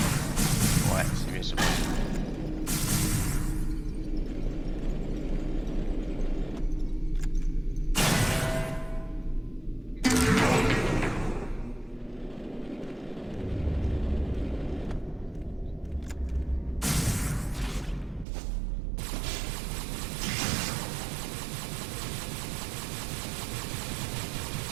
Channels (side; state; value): left; drops out; at 18.2 s